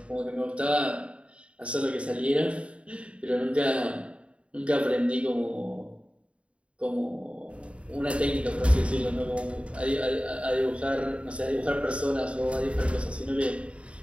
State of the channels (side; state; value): left; late; 0.061 ms